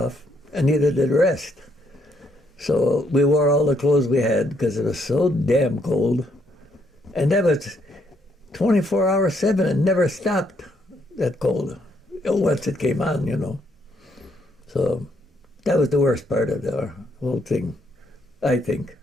and neither did the rest. So we wore all the clothes we had because it was so damn cold. And that was 24 hours, 7, and never stopped, that cold. Once it came on, So that was the worst part of the whole thing, I think.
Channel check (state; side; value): normal; both; correlation 0.72